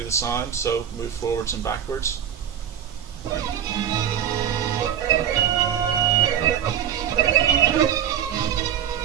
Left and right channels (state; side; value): quieter; left; 9.5 dB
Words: the sound, so move forwards and backwards.